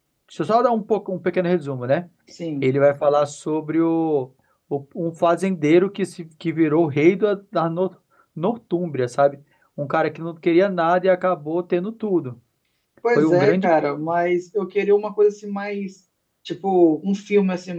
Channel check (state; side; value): identical; both; correlation 1.00